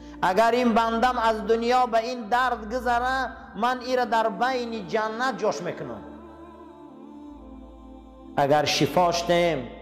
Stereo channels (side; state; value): both; identical; correlation 1.00